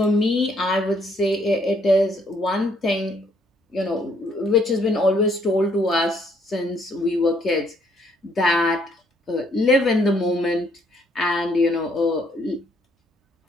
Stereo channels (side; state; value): both; normal; correlation 0.68